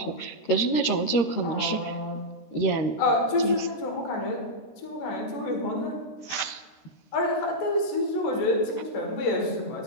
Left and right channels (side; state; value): right; late; 13 ms